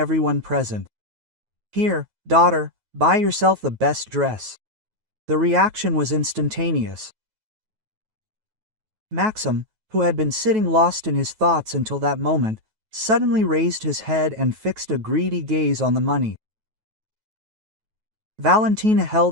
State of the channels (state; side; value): late; left; 9.3 ms